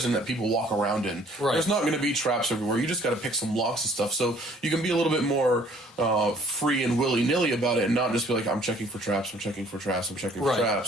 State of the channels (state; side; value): normal; both; correlation 0.58